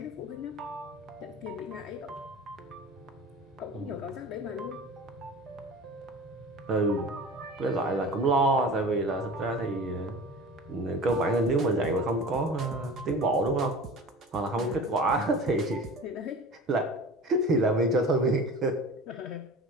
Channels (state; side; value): normal; both; correlation 0.37